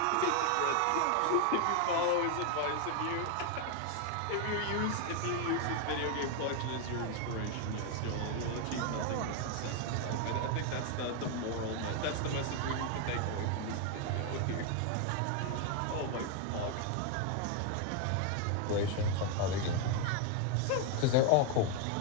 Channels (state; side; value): different; both; correlation 0.01